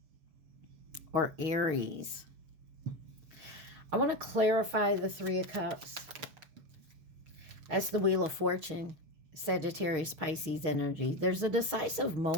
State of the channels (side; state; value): left; late; 6.4 ms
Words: or Aries. I want to clarify the Three of Cups. That's the Wheel of Fortune, Sagittarius, Pisces energy. There's a decisive